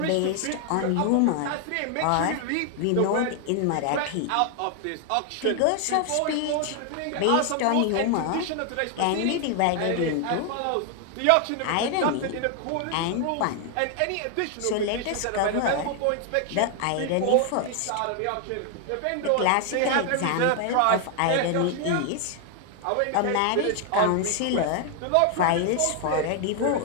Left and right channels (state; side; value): different; both; correlation 0.00